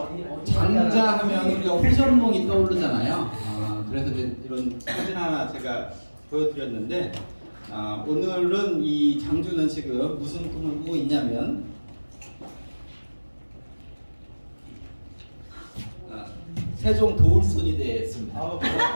장자하면 우리가 호전몽이 떠오르잖아요. 그래서 이런 사진 하나 제가 보여드렸는데 오늘은 이 장주는 지금 무슨 꿈을 꾸고 있냐면 세종 도울손이 됐습니다.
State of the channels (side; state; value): both; inverted; correlation -1.00